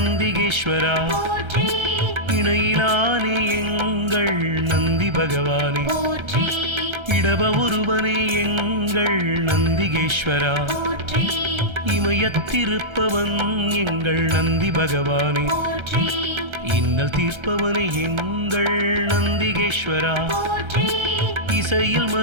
போற்றி இணையிலானே எங்கள் நந்தி பகவானே, போற்றி இடப ஒருவனே எங்கள் நந்திகேஸ்வரா, போற்றி இமயத்திருப்பவன் எங்கள் நந்தி பகவானே, போற்றி இன்னல் தீர்ப்பவனே எங்கள் நந்திகேஸ்வரா, போற்றி இசையில்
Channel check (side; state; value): left; late; 1.3 ms